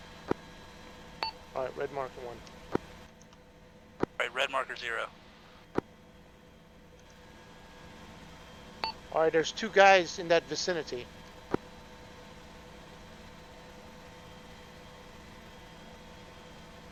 Alright, red marker 1. Right, red marker 0. Alright, there's 2 guys in that vicinity.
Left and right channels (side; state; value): both; identical; correlation 1.00